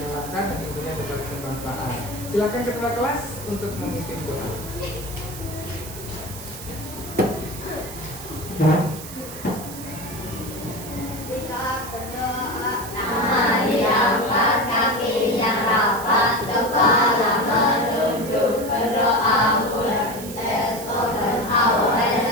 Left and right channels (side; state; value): right; noise; hiss, 13 dB below the sound